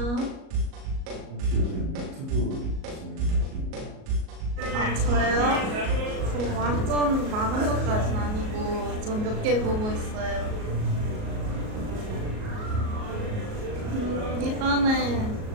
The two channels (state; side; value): late; left; 38 ms